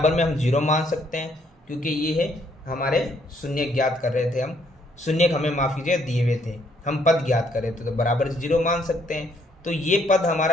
में हम 0 मान सकते हैं, क्योंकि ये है हमारे शून्य ज्ञात कर रहे थे हम, शून्य हमें माफ कीजिए दिए हुए थे, हम पद ज्ञात कर रहे थे, तो बराबर 0 मान सकते हैं। तो ये पद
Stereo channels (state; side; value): normal; both; correlation 0.69